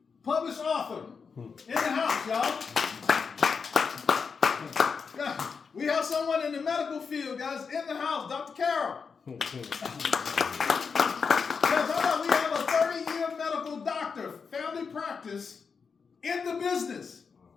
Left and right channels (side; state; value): right; quieter; 5.6 dB